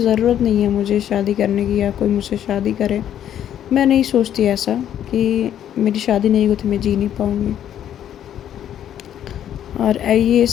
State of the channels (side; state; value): right; quieter; 10.4 dB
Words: नहीं है मुझे शादी करने की, या कोई मुझसे शादी करे। मैं नहीं सोचती ऐसा कि मेरी शादी नहीं होती मैं जी नहीं पाऊँगी। और ये